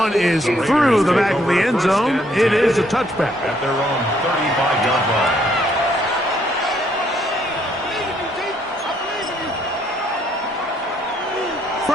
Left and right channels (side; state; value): both; normal; correlation 0.69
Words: is through the back of the end zone. It is a touchback. At their own 35-yard line.